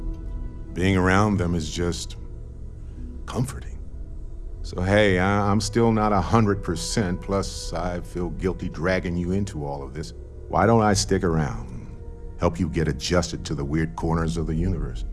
Being around them is just comforting. So hey, I'm still not 100%, plus I feel guilty dragging you into all of this. Why don't I stick around? Help you get adjusted to the weird corners of the universe.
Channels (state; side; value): identical; both; correlation 1.00